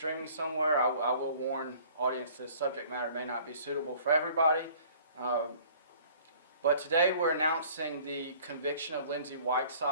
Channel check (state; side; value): inverted; both; correlation -0.52